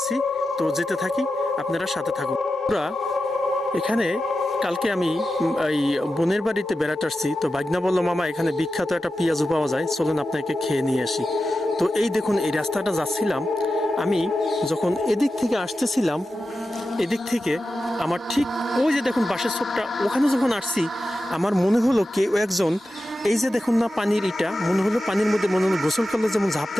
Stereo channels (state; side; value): normal; both; correlation 0.92